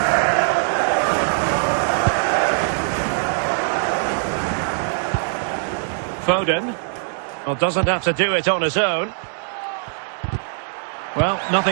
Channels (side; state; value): left; silent; digital silence